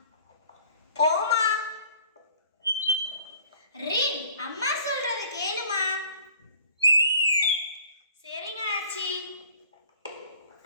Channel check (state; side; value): inverted; both; correlation -0.51